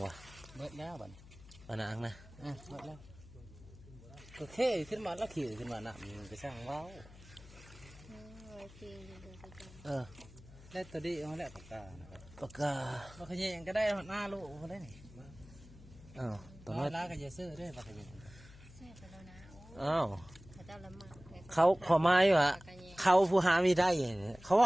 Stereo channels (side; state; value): left; noise; hum, 20 dB below the sound